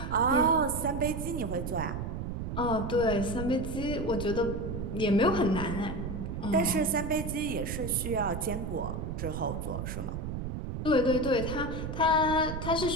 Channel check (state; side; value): noise; right; rumble, 5 dB below the sound